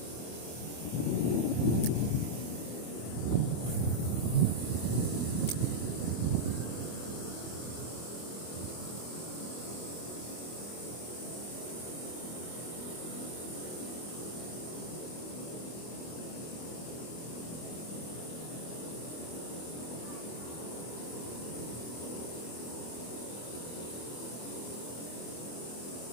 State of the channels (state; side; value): late; right; 24 ms